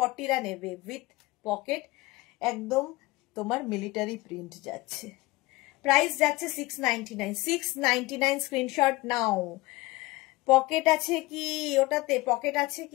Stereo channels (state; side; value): quieter; right; 20.7 dB